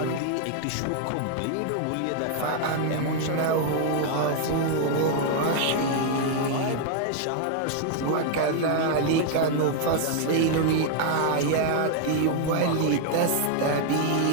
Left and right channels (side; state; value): both; different; correlation 0.00